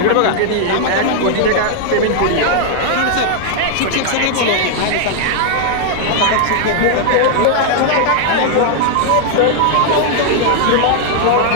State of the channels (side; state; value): both; different; correlation 0.00